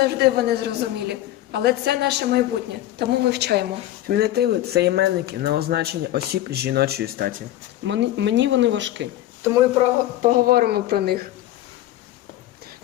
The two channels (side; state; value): right; quieter; 14.1 dB